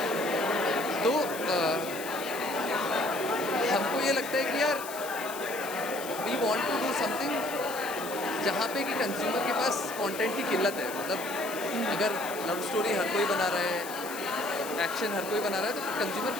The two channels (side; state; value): left; noise; hiss, 11 dB below the sound